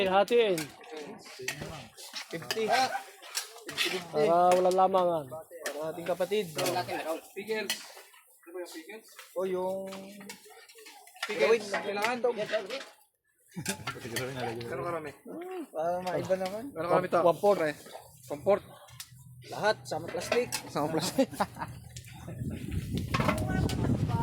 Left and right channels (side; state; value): both; identical; correlation 1.00